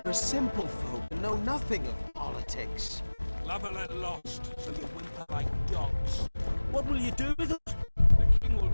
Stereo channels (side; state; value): both; inverted; correlation -1.00